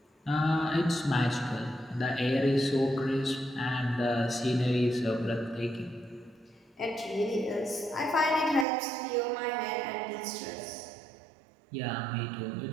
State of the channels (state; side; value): drops out; left; at 8.7 s